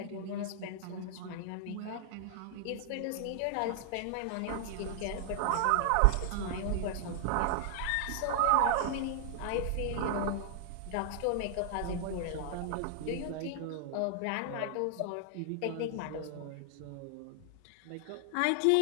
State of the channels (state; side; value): different; both; correlation 0.00